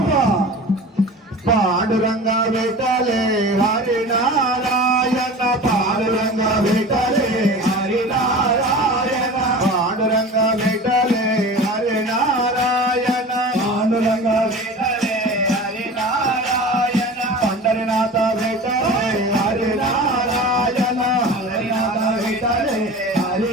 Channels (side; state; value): both; normal; correlation 0.36